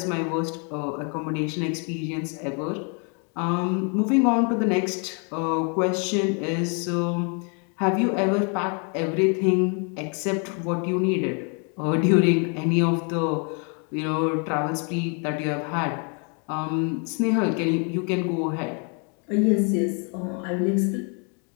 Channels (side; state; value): right; quieter; 37.6 dB